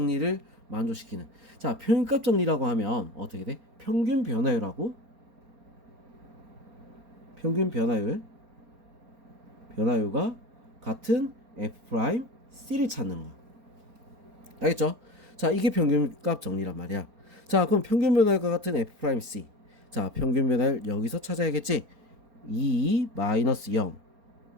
만족시키는. 자, 평균값 정리라고 하면 어떻게 돼? 평균 변화율하고 평균 변화율과 같은 f 프라임 c를 찾는 거. 알겠죠? 자, 이게 평균값 정리란 말이야. 자, 그럼 평균 변화율과 같은 f 프라임 c. 자, 평균 변화율 여기서 찾아야겠지? 2 마이너스 0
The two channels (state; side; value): late; left; 4.3 ms